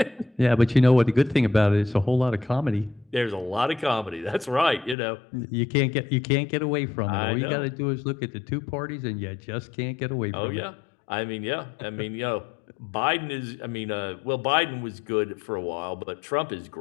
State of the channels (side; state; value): right; drops out; at 5.0 s